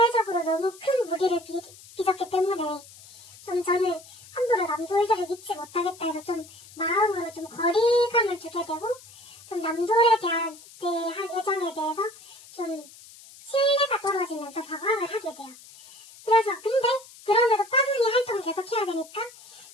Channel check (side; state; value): left; noise; hiss, 21 dB below the sound